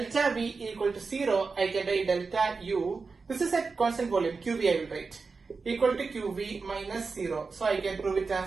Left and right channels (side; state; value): left; quieter; 4.5 dB